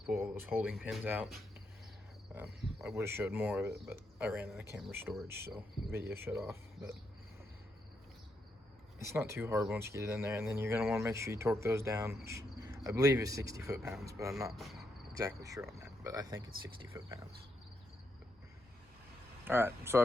pull all those holding pins out. I would have showed more of it, but I ran out of camera storage, so the video shut off. But it's not too hard once you get it in there, and then you're going to want to make sure you torque those down, which I believe is 60 foot-pounds, but I'm not exactly sure on that, but I think it's 60 foot-pounds. Alright, so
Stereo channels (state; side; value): normal; both; correlation 0.80